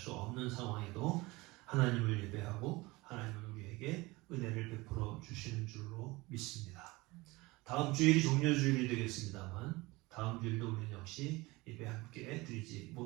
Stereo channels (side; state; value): left; quieter; 22.2 dB